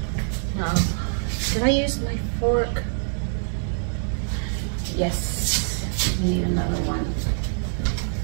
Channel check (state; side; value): silent; left; 62 dB below the other